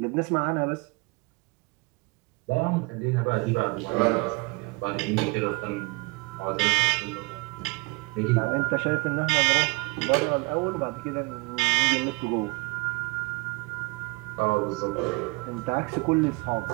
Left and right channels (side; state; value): left; quieter; 25.8 dB